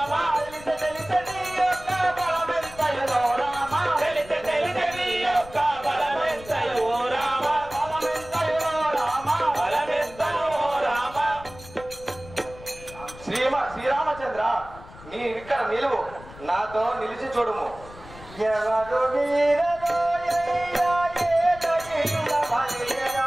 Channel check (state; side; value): noise; left; rumble, 18 dB below the sound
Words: తెలిసి తెలిసి నీ యొక్క బలమెంతయులో రామ తెలిసి నీ యొక్క బలమెంతయో రామ బలమెంతయులో రామ బలమెంతయో రామ. శ్రీరామచంద్ర, నీ ఇక్కడ నిలువు, నాతో నిలిచి చూడుము. ఎవరు మీరలో అయ్యా ఏదో నిలువ